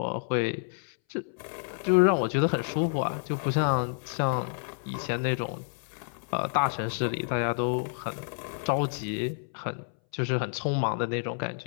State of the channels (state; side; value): silent; right; 58 dB below the other